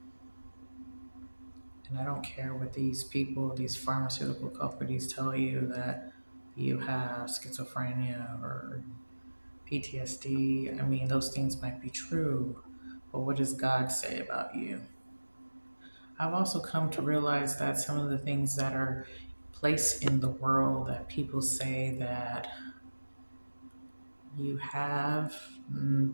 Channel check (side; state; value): both; inverted; correlation -1.00